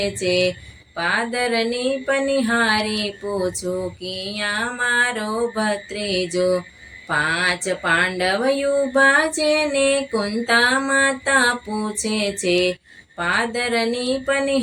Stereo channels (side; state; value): both; identical; correlation 1.00